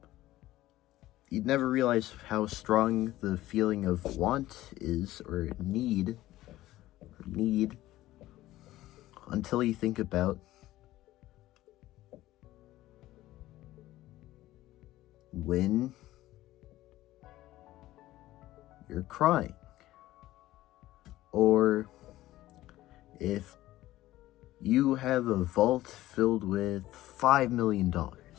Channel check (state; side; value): quieter; right; 15.8 dB